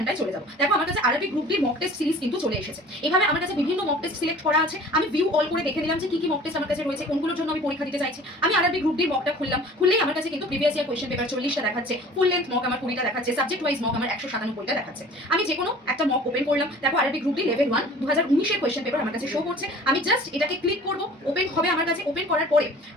চলে যাবো। দেখো আমার কাছে আরআরবি গ্রুপ ডির মক টেস্ট সিরিজ কিন্তু চলে এসেছে। এভাবে আমার কাছে বিভিন্ন মক টেস্ট সিলেক্ট করা আছে, আমি ভিউ অল করে দেখে নিলাম যে কি কি মক টেস্ট আমার কাছে রয়েছে, কোনগুলোর জন্য আমি পরীক্ষা দিতে চাইছি। আমি আরআরবি গ্রুপ ডির মকটা খুললাম, খুললেই আমার কাছে কিন্তু প্রিভিয়াস ইয়ার কোয়েশ্চেন পেপার 40টা দেখাচ্ছে, ফুল লেন্থ মক আমার 20টা দেখাচ্ছে, সাবজেক্ট ওয়াইজ মক আমার 197টা দেখাচ্ছে। আমি যে কোনো একটা মক ওপেন করলাম, দেখো আরআরবি গ্রুপ ডি লেভেল 1 2019 এর কোয়েশ্চেন পেপার আমার কাছে শো করছে। আমি জাস্ট এটাকে ক্লিক করব, ওপেন হবে আমার কাছে। ওপেন করার পরে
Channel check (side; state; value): both; normal; correlation 0.46